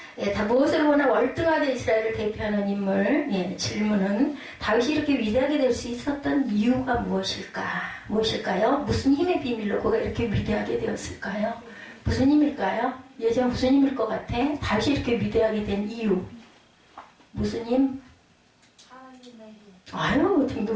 다 무엇을 보나 월등하게 이스라엘을 대표하는 인물. 질문은 다윗이 이렇게 위대하게 될 수 있었던 이유가 무엇일까요? 무슨 힘의 비밀로 그가 이렇게 위대하게 되었을까요? 무슨 힘일까요? 예전 무슨 힘일 것 같아? 다윗이 이렇게 위대하게 된 이유. 무슨 힘? 하나님의 힘.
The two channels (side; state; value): both; identical; correlation 1.00